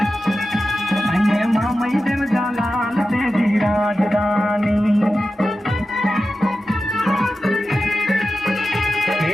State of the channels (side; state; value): both; normal; correlation 0.92